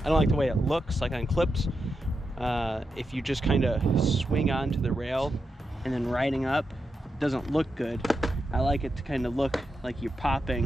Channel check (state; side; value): normal; both; correlation 0.87